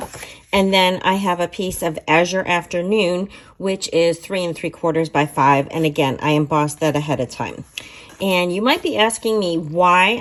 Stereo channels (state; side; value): identical; both; correlation 1.00